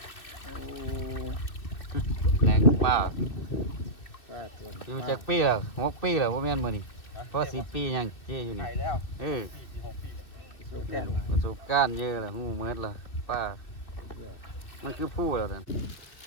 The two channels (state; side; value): late; right; 2.4 ms